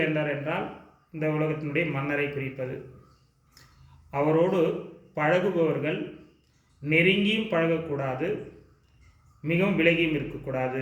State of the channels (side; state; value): both; identical; correlation 1.00